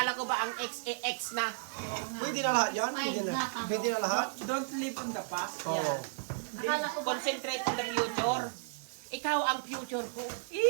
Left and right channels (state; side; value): silent; left; 55 dB below the other